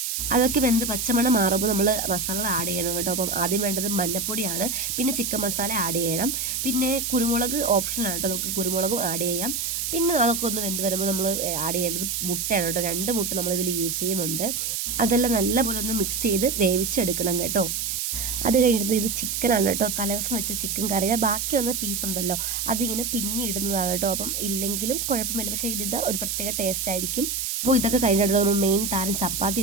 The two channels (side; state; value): right; noise; hiss, 1 dB below the sound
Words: അതൊക്കെ വെന്ത് പച്ചമണം മാറുമ്പോൾ നമ്മൾ മസാലകൾ ആഡ് ചെയ്യണം കേട്ടോ. അപ്പം ആദ്യം വേണ്ടത് മഞ്ഞപ്പൊടിയാണ്, പിന്നെ ചിക്കൻ മസാല ആഡ് ചെയ്യണം, പിന്നെ കുരുമുളക് ഓപ്ഷനാണ് കേട്ടോ, നമുക്ക് കുരുമുളകും ആഡ് ചെയ്യാം. പിന്നെ അതൊക്കെ ഒന്ന് വെന്ത് വരുമ്പോൾ നമ്മൾ ആഡ് ചെയ്യേണ്ടത് മുട്ടയാണ് കേട്ടോ. 2 മുട്ട നമ്മളിതിൽ യൂസ് ചെയ്യുന്നുണ്ട്. അതെല്ലാം നല്ലപോലെ ഒന്ന് മിക്സ് ചെയ്ത് വേവിച്ചെടുക്കണം കേട്ടോ. അത് കഴിഞ്ഞിട്ട് ഇത് ചിക്കനാണ് കേട്ടോ, തലേദിവസം വെച്ച ചിക്കൻ കറിയുടെ ബാക്കി വന്ന പീസ് ഉണ്ടല്ലോ, അതിങ്ങനെ പിന്നിടുന്നതാണ് കേട്ടോ. അപ്പം ഇല്ലെങ്കിലും കുഴപ്പമില്ല, പക്ഷേ ഇതിൻ്റെ ഒരു പ്രത്യേക ടേസ്റ്റ് ആയിരിക്കും. അപ്പോൾ ഇതൊക്കെ കഴിഞ്ഞിട്ട് നമ്മൾ മെയിൻ താരം ചപ്പാത്തി